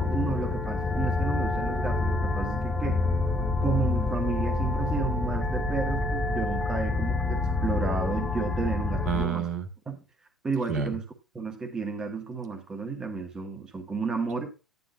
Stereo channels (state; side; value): normal; both; correlation 0.65